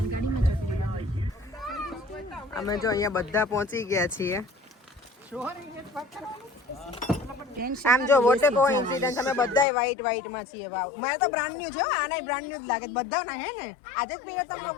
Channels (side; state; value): right; drops out; at 9.7 s